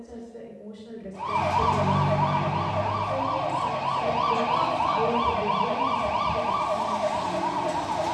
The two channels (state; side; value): identical; both; correlation 1.00